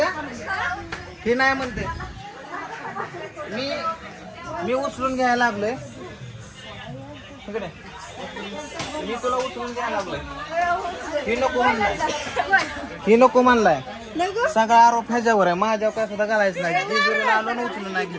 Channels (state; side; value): identical; both; correlation 1.00